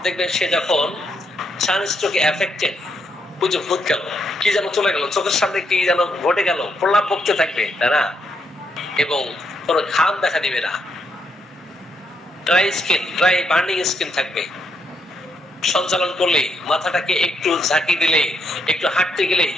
দেখবেন সে যখন সানস্ট্রোকে এফেক্টেড, বুঝে ভূত গেল, কি যেন চলে গেল, চোখের সামনে কি যেন ঘটে গেল, প্রলাপ বকতে থাকবে, তাই না? এবং কোনো ঘাম দেখা দিবে না, dry skin, dry burning skin থাকবে। সঞ্চালন করলে, মাথাটাকে একটু ঝাঁকি দিলে, একটু হাঁটতে গেলে,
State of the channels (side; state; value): both; normal; correlation 0.77